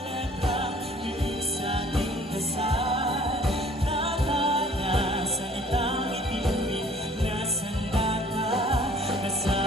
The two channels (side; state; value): both; normal; correlation 0.54